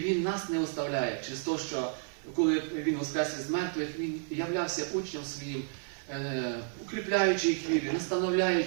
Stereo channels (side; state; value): left; silent; 57 dB below the other